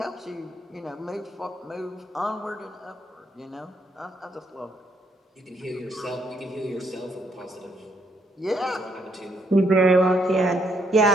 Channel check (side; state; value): both; normal; correlation 0.72